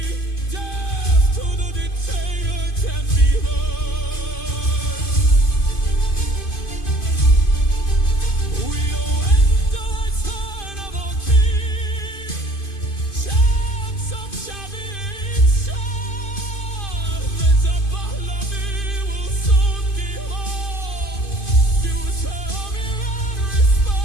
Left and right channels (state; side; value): late; right; 2.5 ms